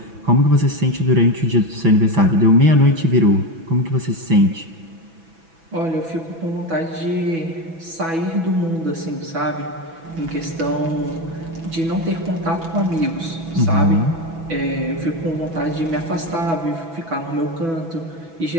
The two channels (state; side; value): late; left; 6.1 ms